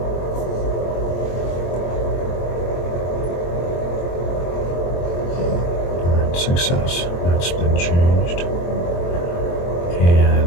success. That's been changed.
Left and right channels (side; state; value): right; late; 23 ms